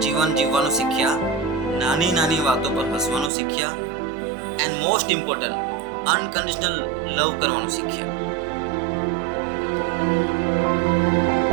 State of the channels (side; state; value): left; drops out; at 3.3 s